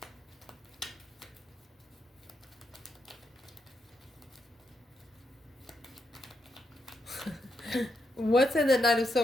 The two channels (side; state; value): both; normal; correlation 0.82